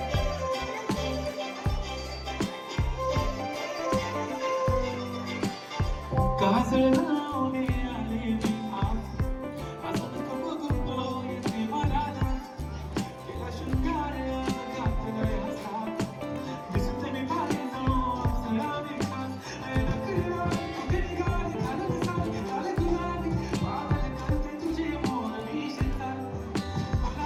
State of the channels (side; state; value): both; identical; correlation 1.00